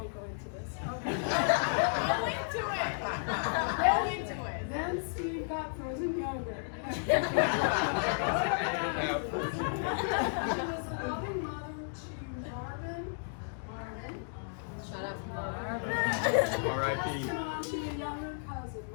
go into this. Okay. Go into it. Go into it. Then Steve got frozen yogurt. She was a loving mother to Marvin. Shut up, Marvin. R.I.P. And on to your younger cousin,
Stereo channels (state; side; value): silent; right; digital silence